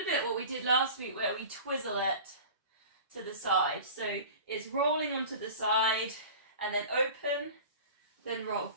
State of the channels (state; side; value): inverted; both; correlation -0.38